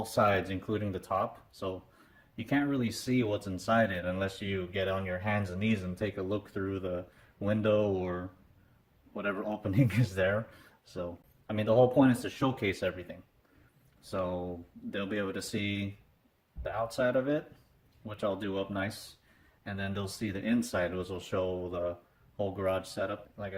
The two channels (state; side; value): identical; both; correlation 1.00